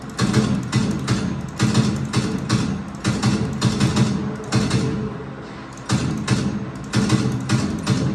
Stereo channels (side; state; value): both; identical; correlation 1.00